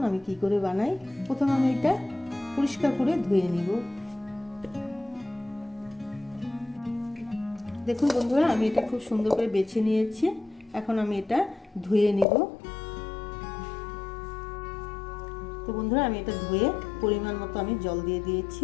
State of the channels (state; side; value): drops out; right; at 12.2 s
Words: আমি কি করে বানাই। প্রথমে আমি এটা পরিষ্কার করে ধুয়ে নিব। দেখুন বন্ধুরা, আমি এটা খুব সুন্দর করে বেছে নিয়েছি। এখন আমি এটা ধুয়ে নিব। তো বন্ধুরা, আমি এটা ধুয়ে পরিমাণ মতো আমি জল দিয়ে দিয়েছি।